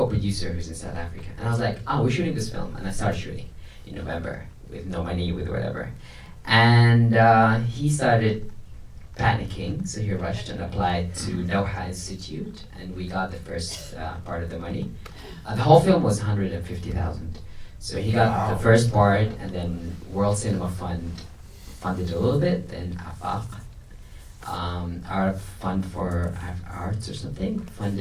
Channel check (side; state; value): both; identical; correlation 1.00